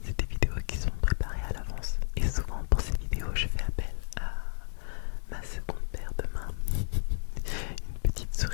c'est des vidéos qui sont préparées à l'avance. Et souvent pour ces vidéos, je fais appel à ma seconde paire de mains, une petite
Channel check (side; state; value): right; silent; digital silence